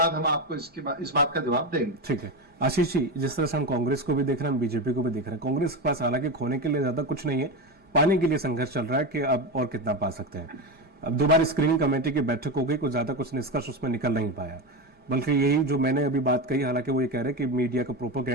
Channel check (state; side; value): late; left; 5.0 ms